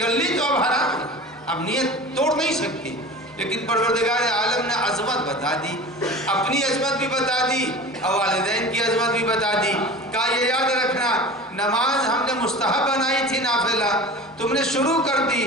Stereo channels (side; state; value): both; normal; correlation 0.36